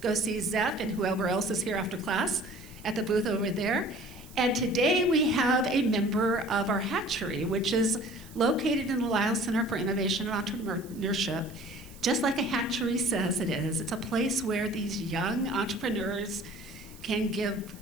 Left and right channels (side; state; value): right; noise; hiss, 22 dB below the sound